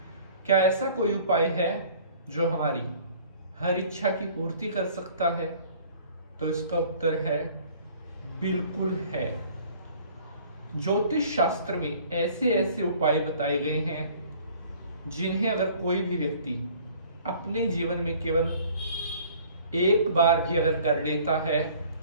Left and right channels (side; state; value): both; inverted; correlation -0.52